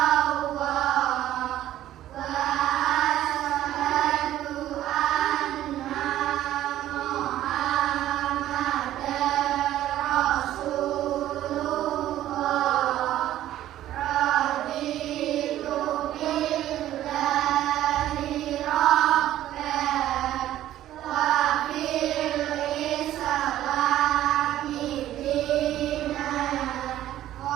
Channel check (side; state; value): left; quieter; 13.1 dB